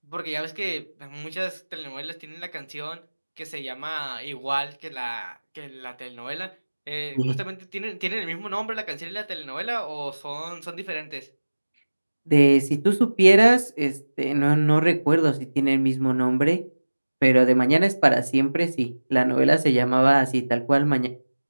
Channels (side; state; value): both; inverted; correlation -1.00